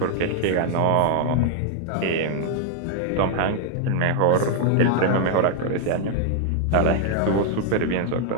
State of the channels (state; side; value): different; both; correlation 0.00